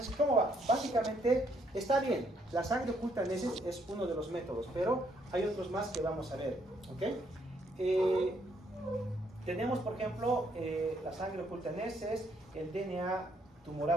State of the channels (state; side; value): normal; both; correlation 0.71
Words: ¿cómo va? Básicamente, está bien, la sangre oculta en heces es uno de los métodos, pero hay otros más que vamos a ver, ¿ok? Tenemos, por ejemplo, la sangre oculta en heces, el DNA